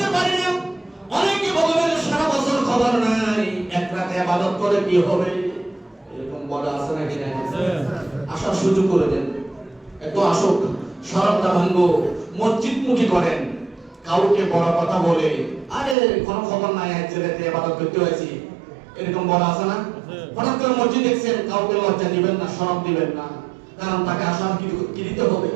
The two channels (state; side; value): drops out; left; at 16.0 s